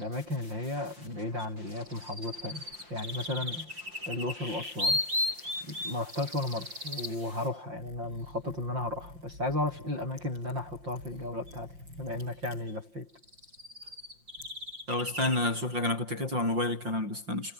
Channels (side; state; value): left; late; 5.7 ms